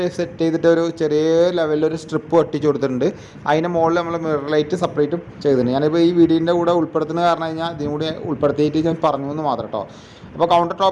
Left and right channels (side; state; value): both; identical; correlation 1.00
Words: സെറ്റ് ചെയ്തിട്ട് ഒരു ചെറിയ ലെവലിലൊരു സ്ട്രിപ്പ് ഒട്ടിച്ച് കൊടുത്തിട്ടുണ്ട്. അതിൻ്റെ മുകളിൽ നമ്മൾ മിറർ ലൈറ്റ് സെപ്പറേറ്റും ചെയ്തിട്ടുണ്ട്. ഞാനിപ്പോൾ ഈ വീഡിയോൻ്റെ കൂടെ ഉൾപ്പെടുത്തുന്നത് കാരണം കഴിഞ്ഞാൽ ഇതിനും കൂടി ഉൾപ്പെടുത്തിയിട്ട് ഞാൻ പറഞ്ഞു എന്ന് മാത്രം കേട്ടോ. അപ്പോൾ കൗണ്ടർ